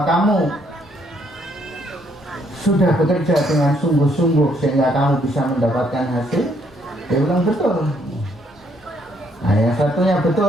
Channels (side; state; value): both; normal; correlation 0.70